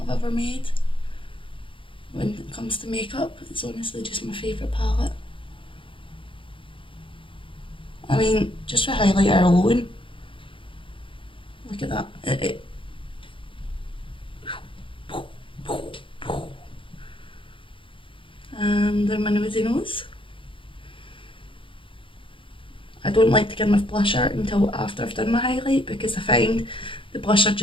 I've ever made. When it comes to makeup, it's honestly just my favourite palette. I mean, just for highlighter alone, look at that. And then my nosy nose. I don't like to get my blusher until after I've done my highlight, because I find the blusher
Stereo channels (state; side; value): late; right; 0.25 ms